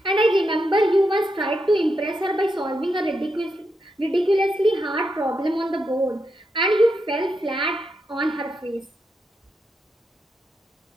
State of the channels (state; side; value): normal; both; correlation 0.84